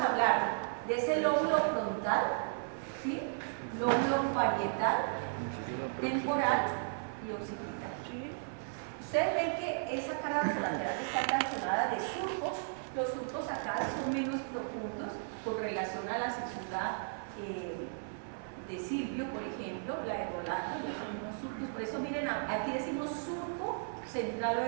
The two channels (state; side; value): silent; left; 54 dB below the other